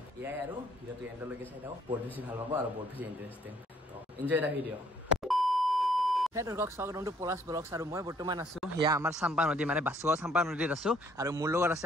ইয়াই আৰু ভিডিওটো এন্ডলৈকে চাই থাকক বহুত বেছি ভাল পাব আৰু বহুত বেছি ইন্টাৰেষ্টিং তো এনজয় দা ভিডিও হে দৰ্শক স্বাগতম টু পলাশ ব্লগছ আৰু মই বৰ্তমান আছো ইয়া আমাৰ চাম্পা নদী মানে বাসুগাঁও চাম্পা নদীত আছো আৰু মোৰ লগত আছে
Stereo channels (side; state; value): both; normal; correlation 0.64